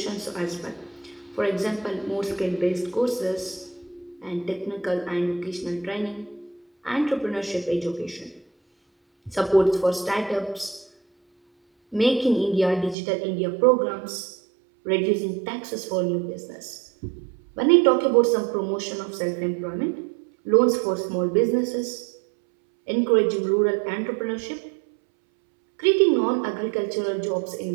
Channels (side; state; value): left; drops out; at 13.0 s